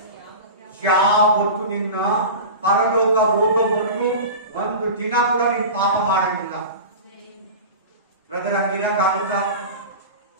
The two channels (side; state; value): both; inverted; correlation -0.31